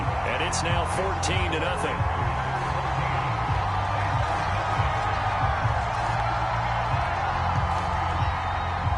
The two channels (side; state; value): both; identical; correlation 1.00